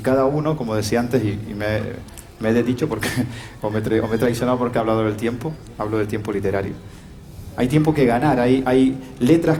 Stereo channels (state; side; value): identical; both; correlation 1.00